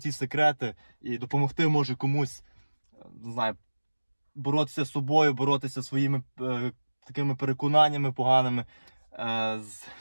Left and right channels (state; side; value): inverted; both; correlation -1.00